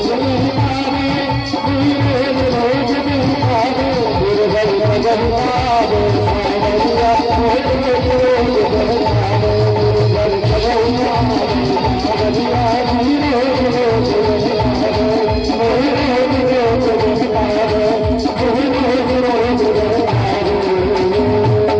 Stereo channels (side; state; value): both; identical; correlation 1.00